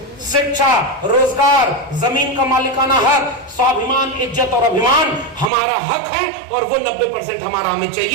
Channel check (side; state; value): left; drops out; at 5.5 s